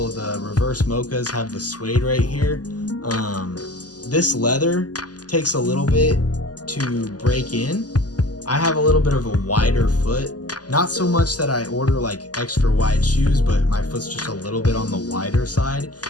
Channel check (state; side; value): late; right; 0.68 ms